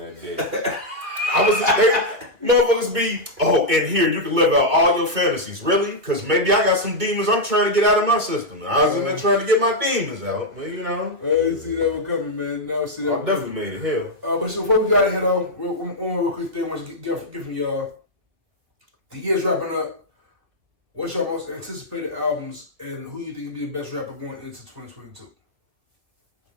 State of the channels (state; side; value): late; left; 2.4 ms